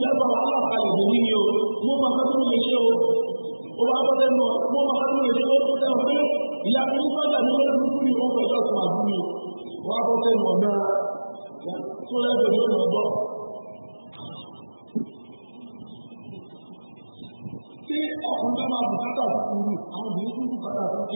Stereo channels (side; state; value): both; inverted; correlation -1.00